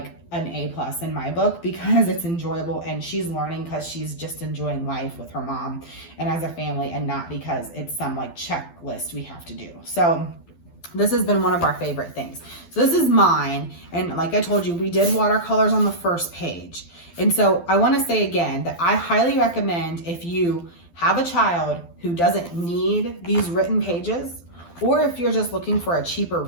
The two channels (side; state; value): right; late; 12 ms